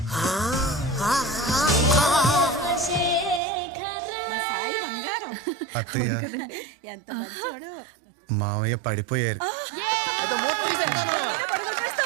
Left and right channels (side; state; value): left; drops out; at 3.4 s